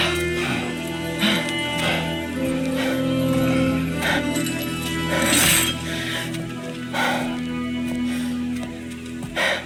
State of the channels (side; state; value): both; identical; correlation 1.00